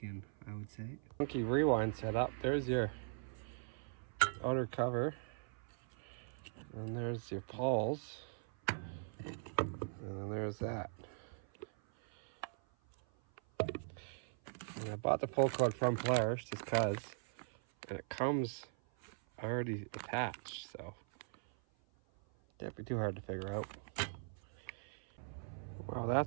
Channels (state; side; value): silent; left; 51 dB below the other